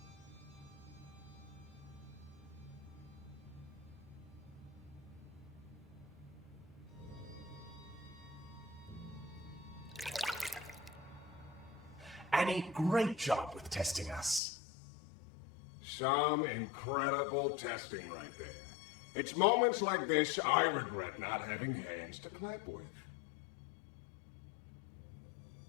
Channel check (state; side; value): drops out; right; at 14.4 s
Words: Annie, great job with testing us. Some incredible testing right there. It's moments like this I regret not having hands to clap with.